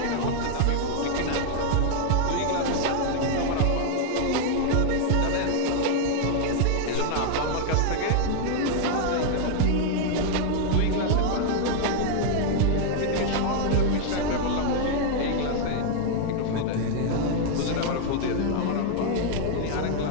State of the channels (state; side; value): different; both; correlation 0.00